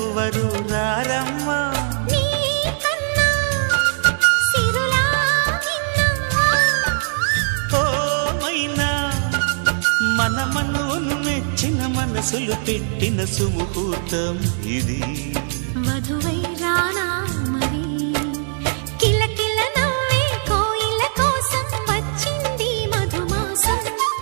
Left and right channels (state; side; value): silent; left; digital silence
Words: రారమ్మా మన మనోను మెచ్చిన మనసులు పెట్టిన సుముహూర్తం ఇది మధువై రానా మరి కిలకిల నవ్వే కోయిల కోసం వచ్చింది మధుమాసం